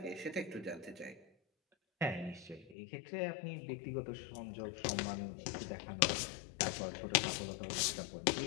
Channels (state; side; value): drops out; right; at 2.8 s